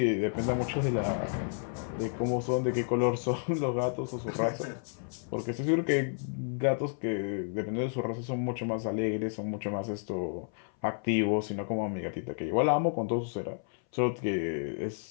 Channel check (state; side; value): silent; right; 57 dB below the other